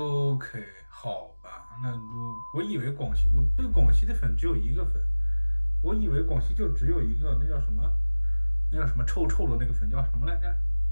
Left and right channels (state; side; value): inverted; both; correlation -1.00